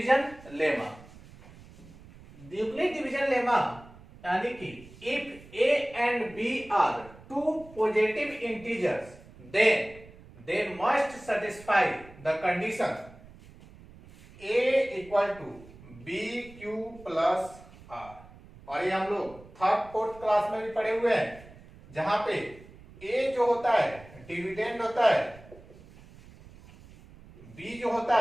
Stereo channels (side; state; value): right; noise; rumble, 21 dB below the sound